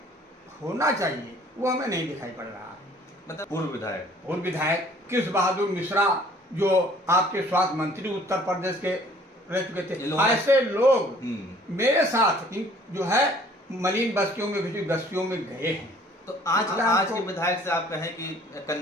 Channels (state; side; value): normal; both; correlation 0.55